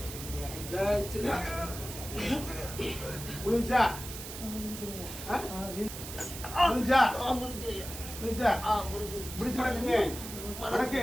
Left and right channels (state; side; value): noise; right; hiss, 10 dB below the sound